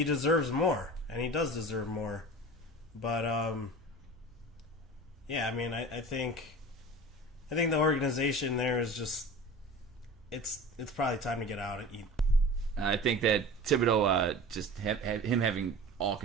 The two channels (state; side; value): normal; both; correlation 0.37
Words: more, and he does deserve more, but I mean, I think the organization there is just it's probably time to get out and eat. I think that Thibodeau, just him having all